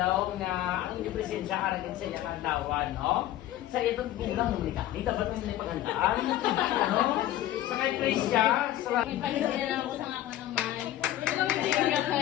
nga ang inyong presensya aragin sa iyang adlawan, no? Sa itong bulang mo ka, di dapat nang nipagandaan, no? Sa kay Krisya, sa Ipalitin na ako sa ako ng may.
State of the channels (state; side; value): quieter; right; 13.6 dB